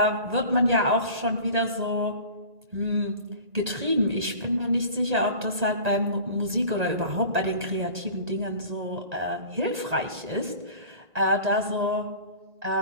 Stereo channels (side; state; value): left; late; 1.8 ms